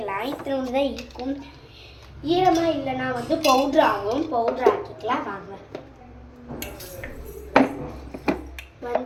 இத்தனை தான் இருக்கும். ஈரமாக இல்லைன்னா வந்து பவுட்ரு ஆகும். பவுட்ரு ஆக்கிக்கலாம். வாங்க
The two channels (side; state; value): both; identical; correlation 1.00